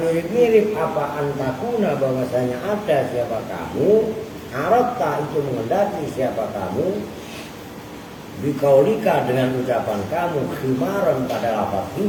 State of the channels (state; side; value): identical; both; correlation 1.00